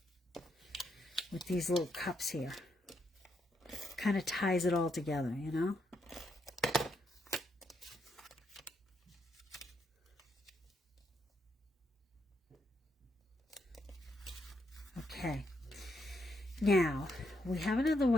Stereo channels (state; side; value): normal; both; correlation 0.78